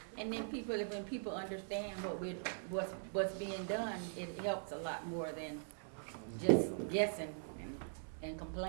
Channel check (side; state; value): left; silent; digital silence